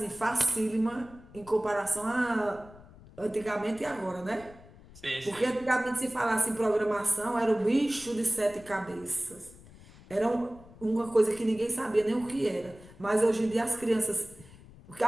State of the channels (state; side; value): noise; left; rumble, 21 dB below the sound